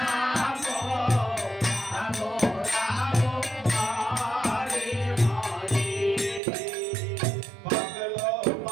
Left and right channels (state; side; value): drops out; left; at 6.4 s